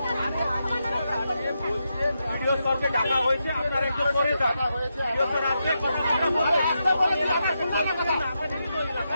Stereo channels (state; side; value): inverted; both; correlation -0.85